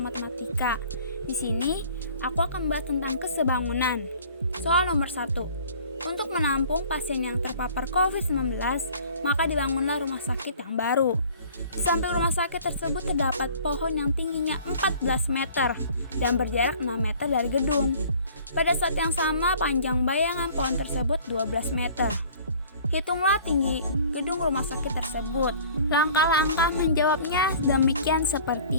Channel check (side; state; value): both; inverted; correlation -0.50